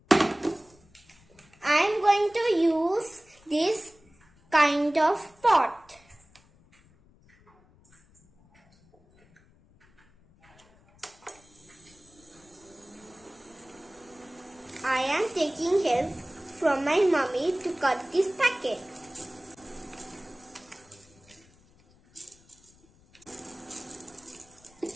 I am going to use this kind of pot. I am taking help from my mummy to cut this packet.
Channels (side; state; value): left; noise; rumble, 29 dB below the sound